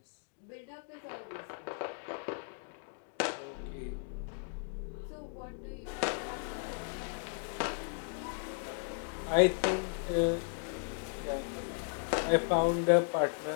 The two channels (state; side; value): silent; right; 54 dB below the other